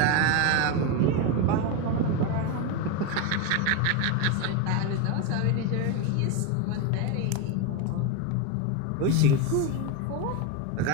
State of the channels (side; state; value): both; different; correlation 0.03